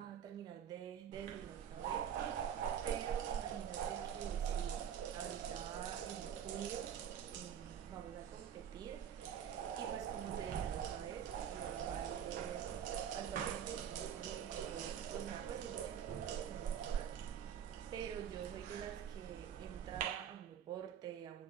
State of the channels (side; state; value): left; quieter; 8.9 dB